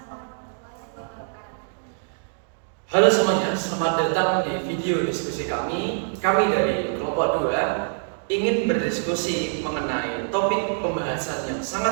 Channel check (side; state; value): left; silent; digital silence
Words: warahmatullahi wabarakatuh. Halo semuanya, selamat datang di video diskusi kami. Kami dari kelompok 2 ingin berdiskusi mengenai topik pembahasan yang